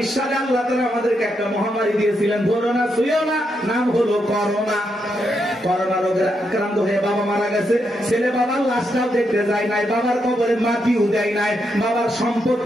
সালে আল্লাহ তাআলা আমাদেরকে একটা মহামারী দিয়েছিলেন, ধরো না ছুঁয়ো না, নাম হলো করোনা। করোনা রোগে আক্রান্ত হয়ে বাবা মারা গেছে, ছেলে বাবার লাশটাও দেখতে যায় নাই, বাবার কবরে মাটিও দেয় নাই। বাবার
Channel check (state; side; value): normal; both; correlation 0.81